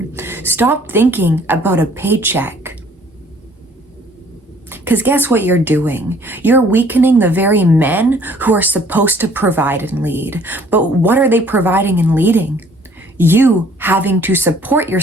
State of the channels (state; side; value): normal; both; correlation 0.57